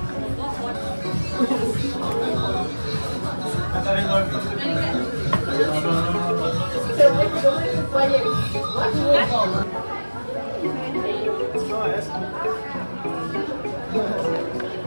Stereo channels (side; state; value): both; inverted; correlation -1.00